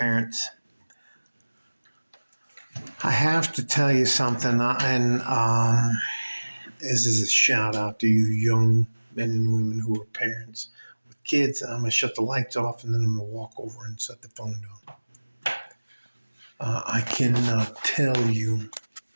I have to tell you something, and this is a shout out to you young men and women who are parents with kids. I'm gonna shut the lights off, and then I'm gonna walk over and set the phone down. I cannot tell you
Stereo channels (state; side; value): inverted; both; correlation -1.00